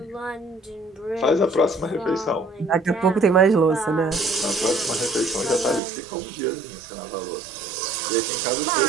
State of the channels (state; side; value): drops out; left; at 5.8 s